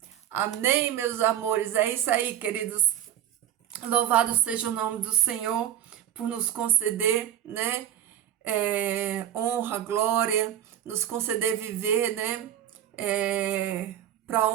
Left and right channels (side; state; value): left; quieter; 11.0 dB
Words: Amém, meus amores. É isso aí, queridos. Louvado seja o nome do Senhor por nos conceder, né? Honra, glória, nos conceder viver, né? Para a